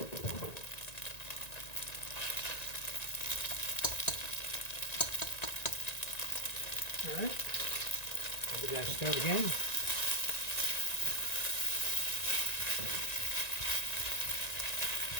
All right, I'll give that a stir again.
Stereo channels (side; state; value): right; late; 1.9 ms